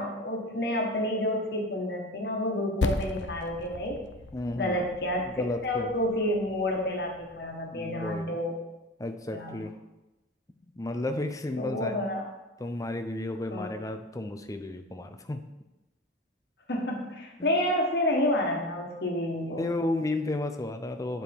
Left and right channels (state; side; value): normal; both; correlation 0.33